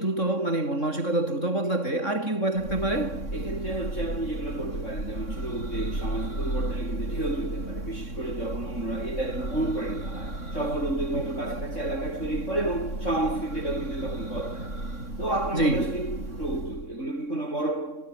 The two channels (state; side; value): late; right; 3.6 ms